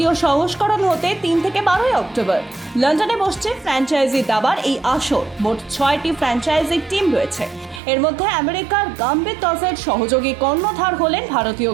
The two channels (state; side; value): drops out; left; at 7.8 s